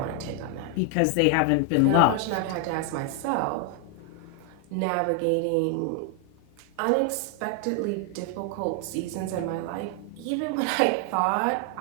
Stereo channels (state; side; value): different; both; correlation 0.00